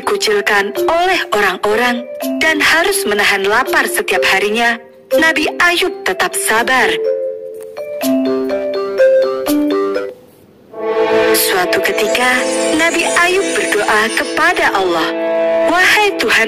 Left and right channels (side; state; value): both; identical; correlation 1.00